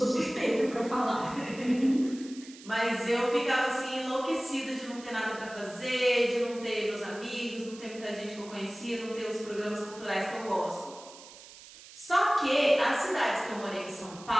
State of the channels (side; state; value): right; noise; hiss, 18 dB below the sound